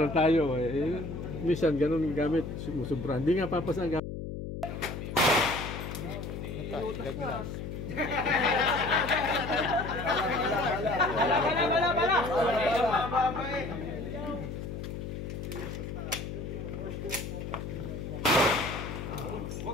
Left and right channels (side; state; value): left; noise; hum, 7 dB below the sound